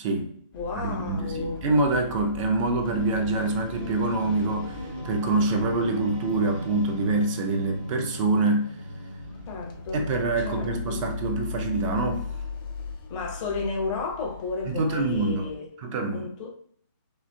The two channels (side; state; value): both; inverted; correlation -0.44